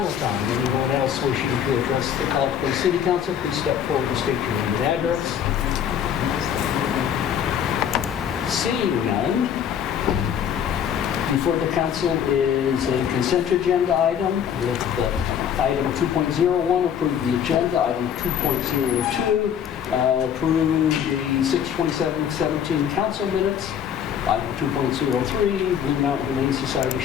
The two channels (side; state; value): right; quieter; 8.6 dB